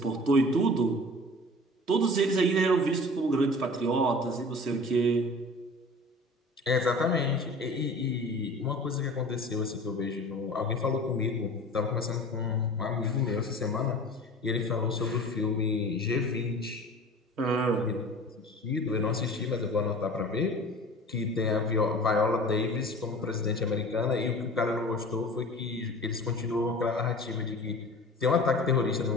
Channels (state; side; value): normal; both; correlation 0.41